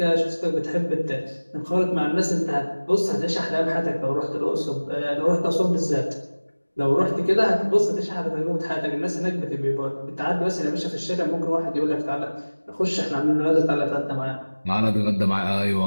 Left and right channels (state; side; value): inverted; both; correlation -1.00